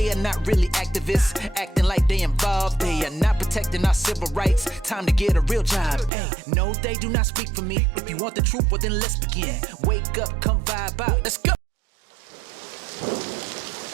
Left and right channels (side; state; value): left; drops out; at 6.1 s